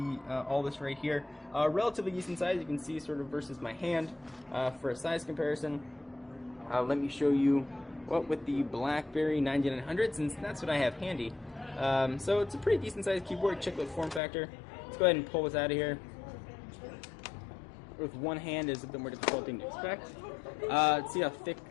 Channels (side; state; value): right; drops out; at 14.2 s